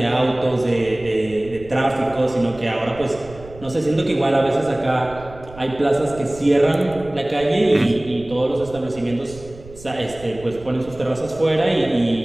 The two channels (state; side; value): noise; right; rumble, 18 dB below the sound